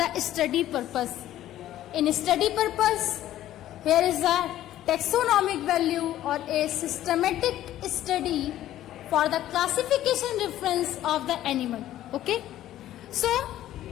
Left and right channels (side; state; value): right; quieter; 13.2 dB